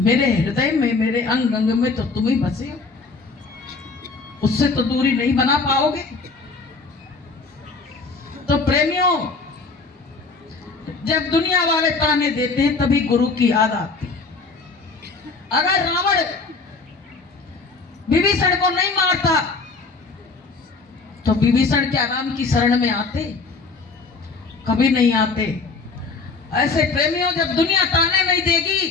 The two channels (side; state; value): right; quieter; 4.1 dB